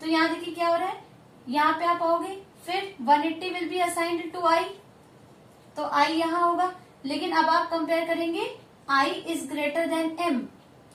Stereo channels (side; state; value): both; identical; correlation 1.00